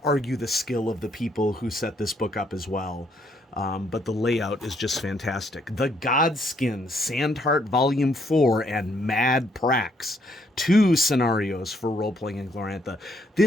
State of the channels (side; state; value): both; normal; correlation 0.71